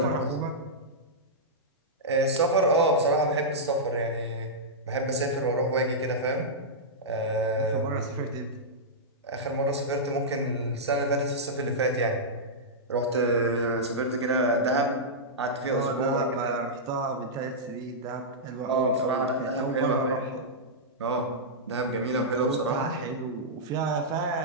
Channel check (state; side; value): normal; both; correlation -0.11